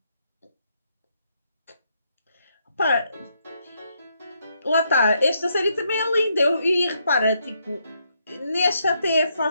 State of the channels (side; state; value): both; inverted; correlation -0.76